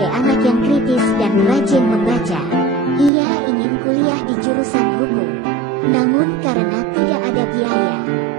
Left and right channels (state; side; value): drops out; left; at 3.1 s